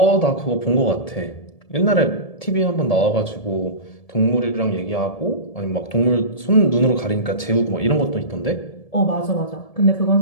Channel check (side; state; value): right; late; 1.7 ms